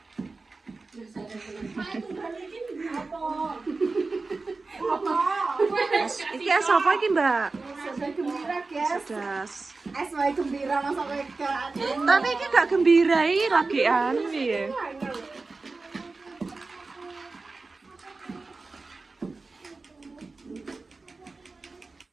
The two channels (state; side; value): quieter; left; 3.8 dB